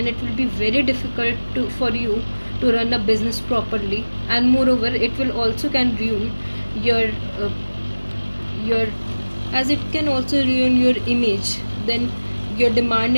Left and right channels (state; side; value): inverted; both; correlation -1.00